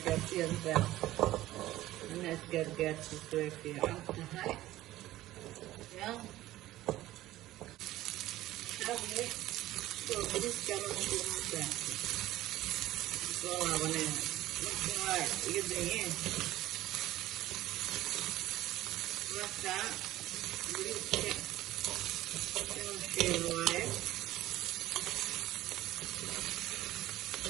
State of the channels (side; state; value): left; quieter; 15.5 dB